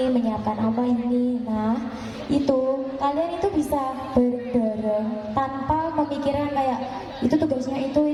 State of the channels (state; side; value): identical; both; correlation 1.00